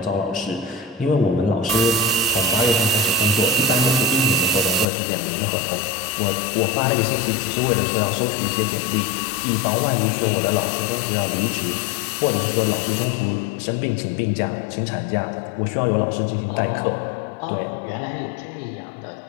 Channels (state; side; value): drops out; right; at 4.9 s